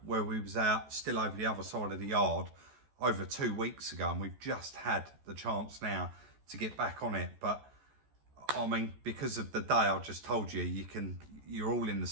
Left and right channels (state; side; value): late; left; 14 ms